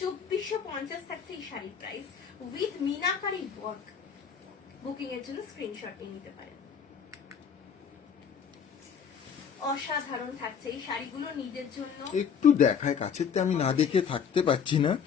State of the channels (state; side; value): quieter; right; 7.1 dB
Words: থাকছে এই শাড়ির price with meenakari work. Booking এর জন্য স্ক্রিনশট নিয়ে নিতে পারেন। অসাধারণ থাকছে এই শাড়িগুলো নিজের জন্য। একটু দেখায় কাছেতে, আমি না দেখে থাকতে পারছি না।